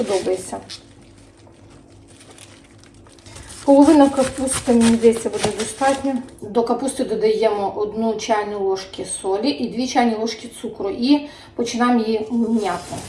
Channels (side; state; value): both; identical; correlation 1.00